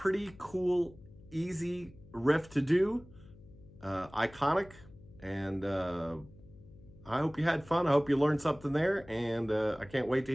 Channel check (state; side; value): noise; left; hum, 22 dB below the sound